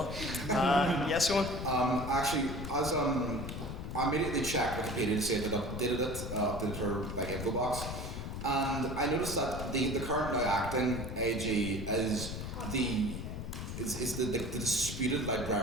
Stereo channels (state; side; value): noise; left; rumble, 6 dB below the sound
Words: Yes, Eóin? Actually, as I immediately checked Wikipedia to see if it updated it, updated her like info box, and I noticed that the current now acting AG is the disputed